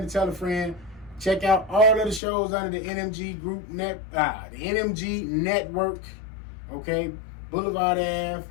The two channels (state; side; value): drops out; right; at 2.2 s